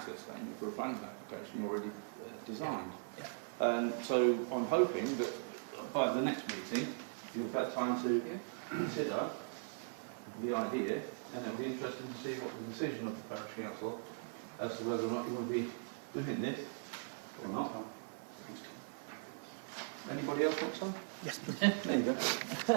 statement for a planning application already designed. Yeah. So I'm hoping that by the next meeting you've had time to consider the idea, and it'll be interesting to see what the decision of the parish council as to whether or not you want to be doing this or not. Anybody else want some? Yes, please. There you go.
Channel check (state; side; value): silent; left; 51 dB below the other